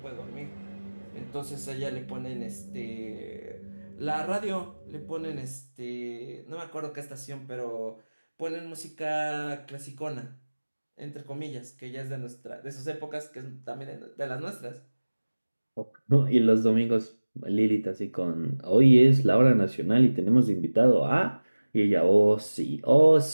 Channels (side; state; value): both; inverted; correlation -1.00